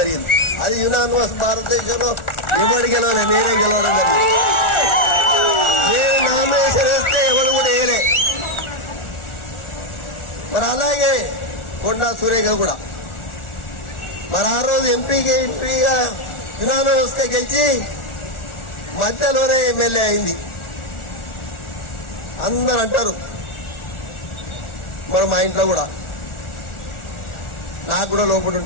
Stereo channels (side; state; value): right; late; 1.4 ms